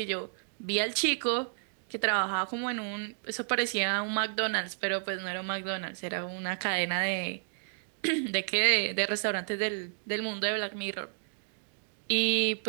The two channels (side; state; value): left; silent; digital silence